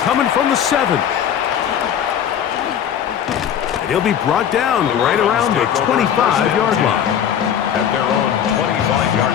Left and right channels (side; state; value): right; quieter; 9.2 dB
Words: from the 7. And he'll be brought down right around the 25-yard line. At their own 25-yard